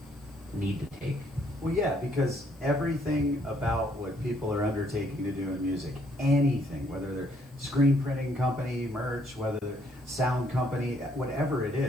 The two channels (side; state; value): left; noise; hiss, 29 dB below the sound